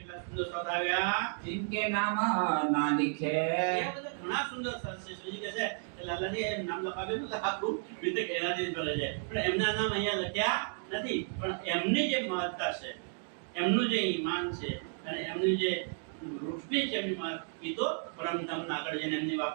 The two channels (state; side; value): silent; left; 56 dB below the other